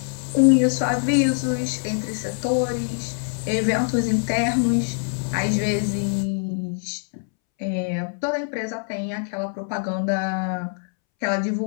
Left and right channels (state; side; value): silent; right; 63 dB below the other